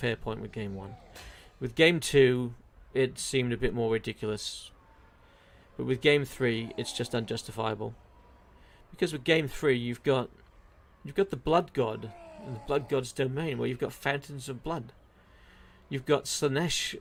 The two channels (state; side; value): identical; both; correlation 1.00